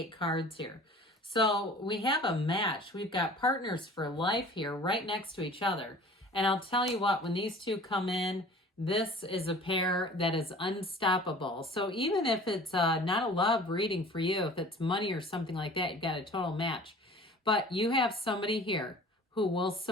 cards here. So we have a match. We've got partners for life here right next to each other. And I'll tell you what, when these two come in, this is a pair that is unstoppable. So even if it's not a love reading for you, if it's money or something like that, you've got a total match. But you have somebody here who will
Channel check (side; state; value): both; normal; correlation 0.45